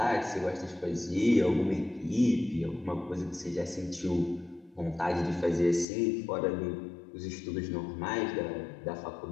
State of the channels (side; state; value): right; drops out; at 5.9 s